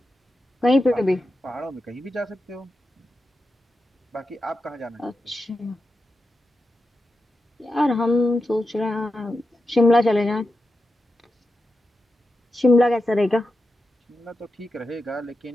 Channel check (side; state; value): both; normal; correlation 0.89